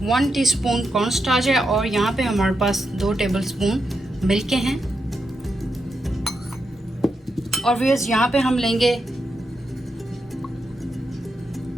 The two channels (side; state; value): both; normal; correlation 0.85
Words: 1 टीस्पून कॉर्नस्टार्च है और यहाँ पे हमारे पास 2 टेबल स्पून मिल्क के हैं। और व्यूअर्स, यहाँ पे हम लेंगे